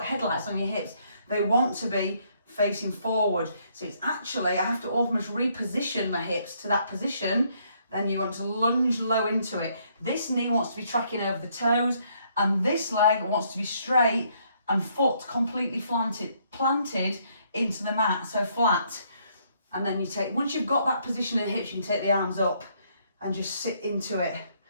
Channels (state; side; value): inverted; both; correlation -0.69